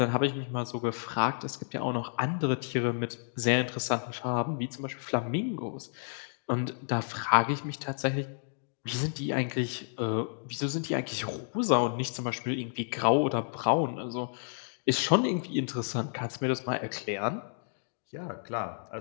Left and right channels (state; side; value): silent; right; digital silence